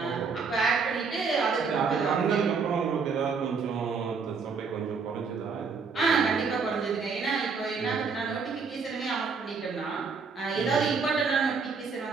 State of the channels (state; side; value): quieter; left; 5.2 dB